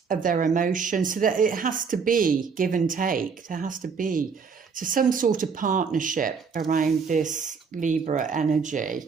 their emotions. So that it has to be give and take. There has to be some sort of partnership around this Libra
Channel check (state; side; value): quieter; left; 5.7 dB